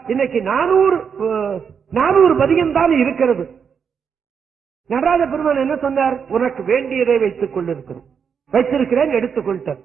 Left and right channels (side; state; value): left; quieter; 6.8 dB